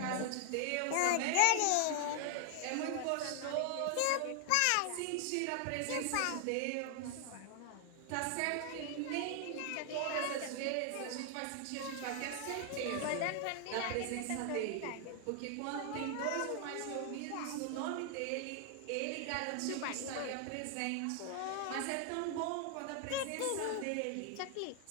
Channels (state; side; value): different; both; correlation 0.00